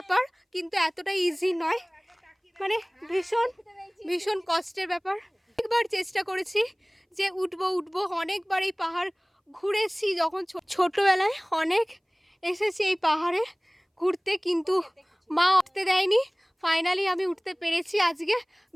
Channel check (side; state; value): both; identical; correlation 1.00